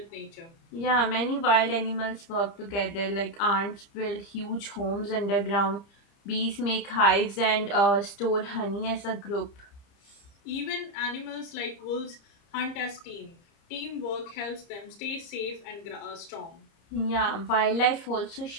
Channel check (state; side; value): late; right; 30 ms